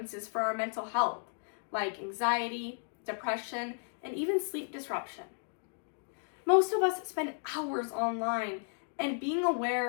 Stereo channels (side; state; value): right; silent; digital silence